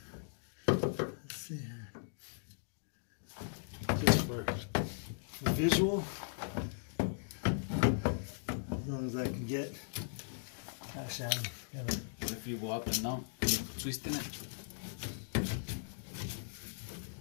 Let's see here. Just for visual. As long as I can get. Actually, I'm gonna. If you go up and down, you're twisting it.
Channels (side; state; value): right; silent; digital silence